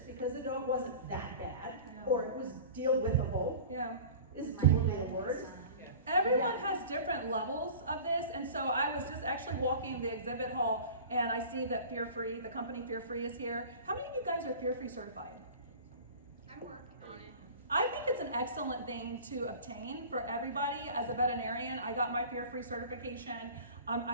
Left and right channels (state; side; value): inverted; both; correlation -0.39